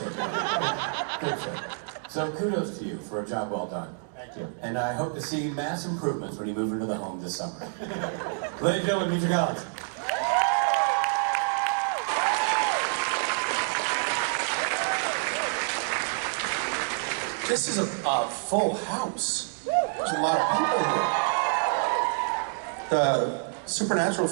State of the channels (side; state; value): left; silent; digital silence